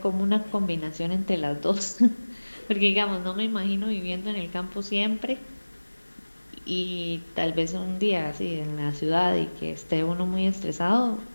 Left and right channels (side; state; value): both; inverted; correlation -1.00